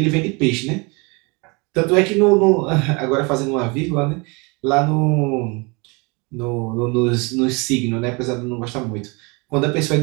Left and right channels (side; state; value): left; quieter; 29.3 dB